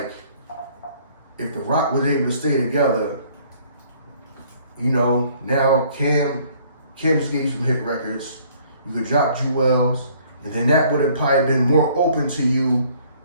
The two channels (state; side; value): inverted; both; correlation -0.59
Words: if the Roc was able to stay together, you know, now Cam just gave you some hit records. You could drop Jewels, and then that would have probably been more open to you